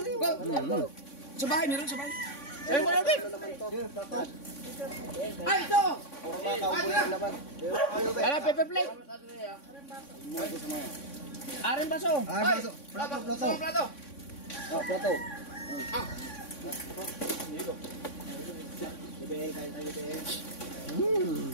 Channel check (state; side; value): late; right; 3.6 ms